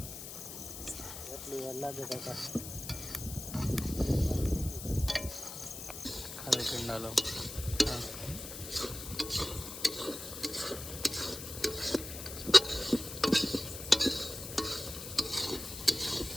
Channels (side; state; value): left; noise; hiss, 9 dB below the sound